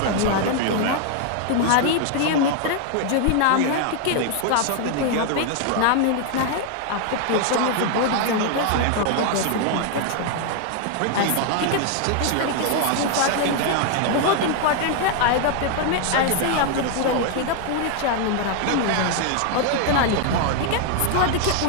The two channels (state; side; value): different; both; correlation 0.00